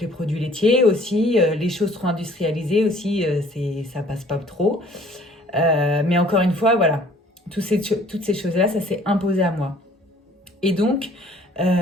produits laitiers aussi, les choses trop industrialisées aussi, ça passe pas trop. Mais encore une fois, voilà, toutes ces choses-là, ça s'est imposé à moi. Et donc,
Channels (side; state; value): both; normal; correlation 0.56